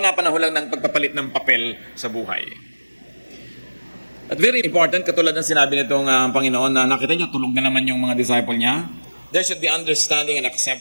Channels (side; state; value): both; inverted; correlation -1.00